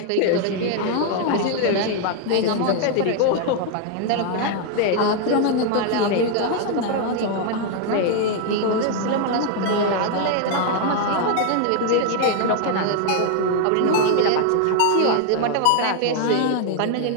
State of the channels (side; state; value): both; different; correlation 0.00